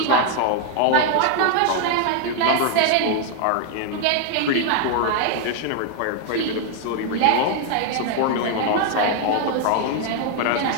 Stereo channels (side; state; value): both; different; correlation 0.00